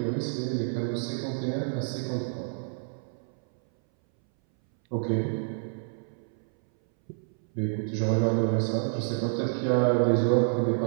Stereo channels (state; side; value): silent; left; 59 dB below the other